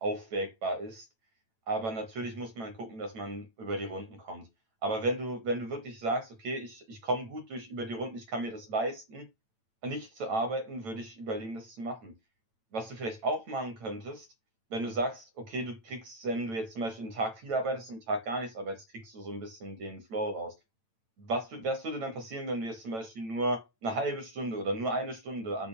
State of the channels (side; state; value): left; late; 9.0 ms